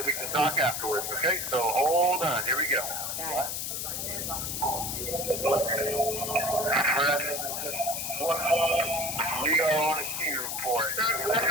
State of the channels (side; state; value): left; noise; hiss, 3 dB below the sound